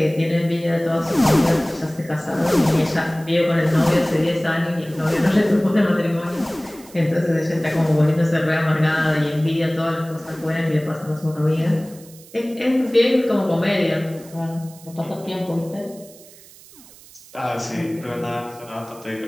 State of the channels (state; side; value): noise; right; hiss, 22 dB below the sound